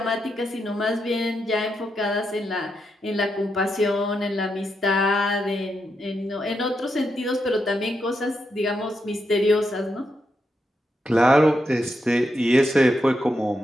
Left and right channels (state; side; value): normal; both; correlation 0.83